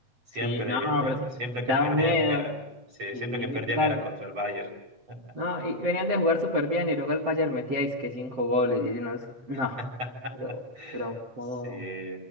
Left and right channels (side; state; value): left; late; 7.8 ms